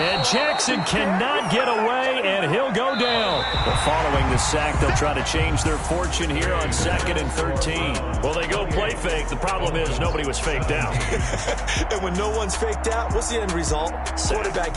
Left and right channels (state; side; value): identical; both; correlation 1.00